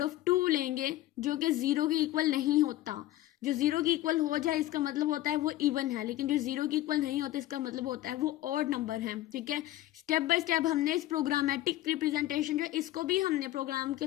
of 2 लेंगे जो कि 0 के इक्वल नहीं होता। जो 0 के इक्वल हो जाए इसका मतलब होता है वो इवन है, लेकिन जो 0 के इक्वल नहीं होता इसका मतलब होता है वो ऑड नंबर है। ठीक है, स्टेप बाय स्टेप हमने इस प्रोग्रामेटिक रिप्रेजेंटेशन जो इसको भी हमने प्रोग्राम के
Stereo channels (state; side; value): quieter; right; 15.3 dB